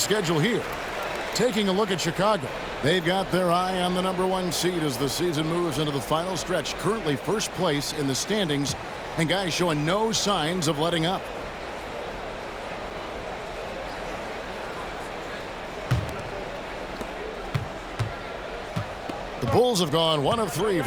here. Taking a look at Chicago. They've got their eye on the #1 seed as the season moves into the final stretch. Currently first place in the standings, and guys showing no signs of letting up. The Bulls have gone 1 of 3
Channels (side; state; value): both; identical; correlation 1.00